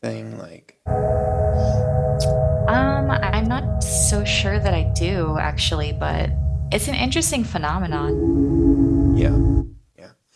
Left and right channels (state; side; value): identical; both; correlation 1.00